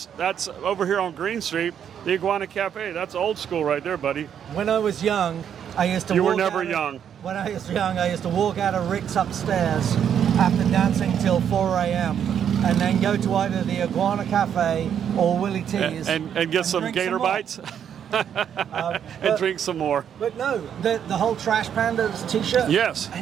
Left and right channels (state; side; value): quieter; left; 8.7 dB